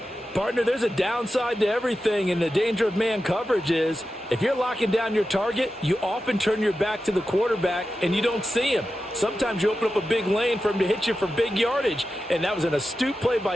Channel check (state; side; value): normal; both; correlation 0.92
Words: Partner, there's a downside to everything, and the danger of man coverage is if you're locking down your target, you often turn your back to the quarterback and you don't see him. Sometimes you open up a big lane for him to hit you for big yardage, and that was an astute play by